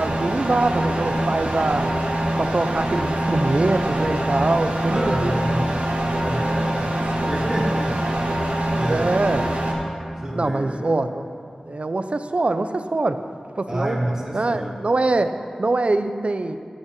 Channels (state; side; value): normal; both; correlation 0.95